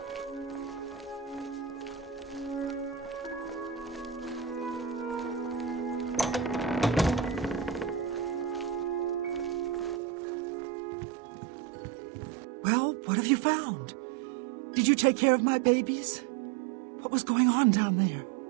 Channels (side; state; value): left; drops out; at 10.0 s